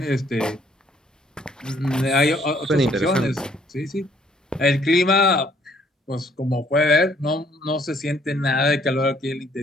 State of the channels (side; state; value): both; normal; correlation 0.64